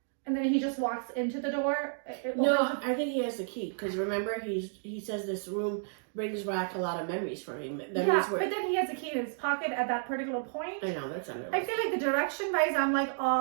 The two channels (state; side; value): silent; left; digital silence